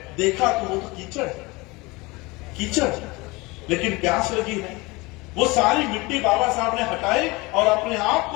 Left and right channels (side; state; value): right; quieter; 23.9 dB